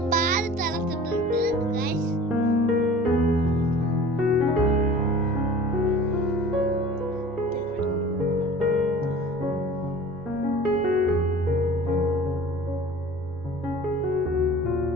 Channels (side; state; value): both; normal; correlation 0.42